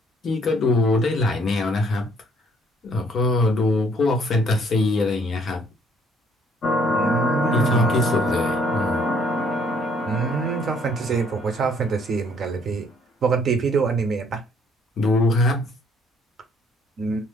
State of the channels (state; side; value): normal; both; correlation 0.63